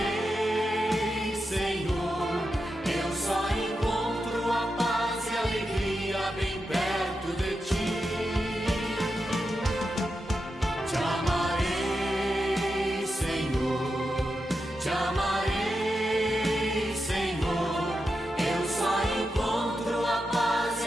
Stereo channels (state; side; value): normal; both; correlation 0.88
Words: Senhor. Eu só encontro a paz e a alegria bem perto de ti. Te amarei, Senhor, te amarei, Senhor. Eu só encontro a paz e